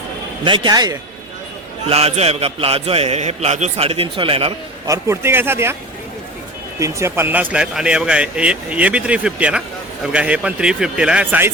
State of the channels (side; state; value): both; normal; correlation 0.31